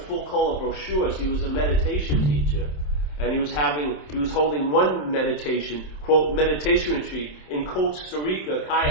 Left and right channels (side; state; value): right; late; 27 ms